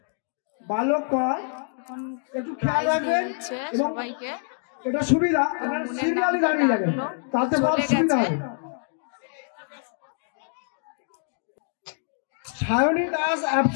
বালকা এখন প্রাইজ দিয়ে দিচ্ছে সবাইকে। এটা সুবিধা, মুনের নামটা ডাকলো, চলে গেছে। সায়নী দাস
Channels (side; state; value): right; silent; 58 dB below the other